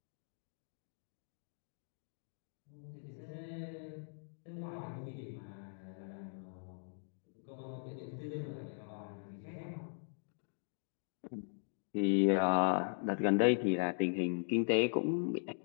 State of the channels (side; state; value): right; silent; digital silence